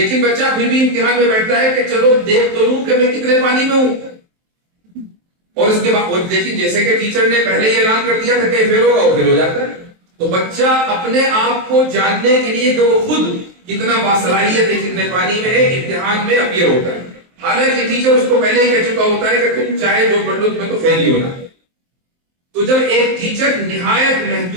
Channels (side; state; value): left; late; 23 ms